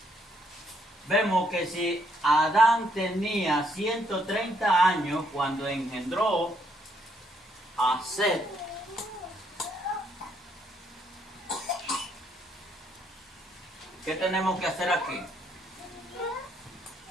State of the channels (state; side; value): normal; both; correlation 0.72